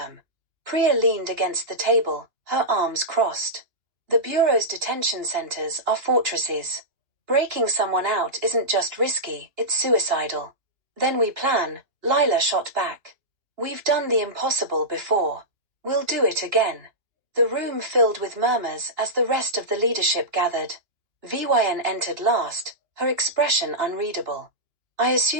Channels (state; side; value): late; left; 2.9 ms